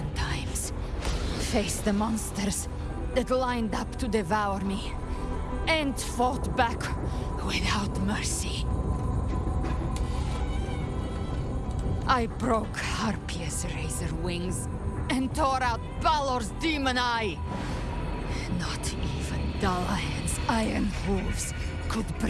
times. Faced the monsters that lined up to devour me, and fought back without mercy. I broke Harpia's razor wings and tore out Balor's demon eye. Not even Dalahan's iron hooves could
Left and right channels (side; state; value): both; identical; correlation 1.00